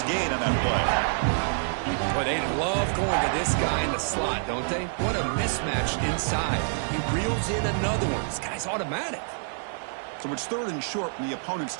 gain on that play. Boy, they love going to this guy in the slot, don't they? What a mismatch inside. He reels in another one. This guy's automatic. So it's 3rd and short from the opponent's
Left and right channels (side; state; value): left; silent; digital silence